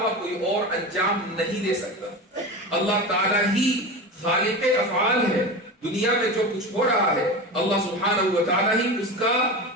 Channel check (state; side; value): normal; both; correlation 0.26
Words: کوئی اور انجام نہیں دے سکتا۔ اللہ تعالیٰ ہی خالق افعال ہے، دنیا میں جو کچھ ہو رہا ہے اللہ سبحانہ و تعالیٰ ہی اس کا